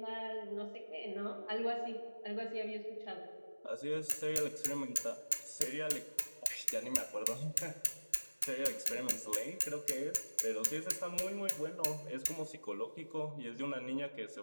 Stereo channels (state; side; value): inverted; both; correlation -1.00